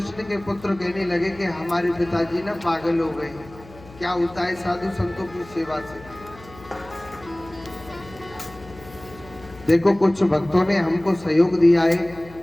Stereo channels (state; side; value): noise; left; hum, 20 dB below the sound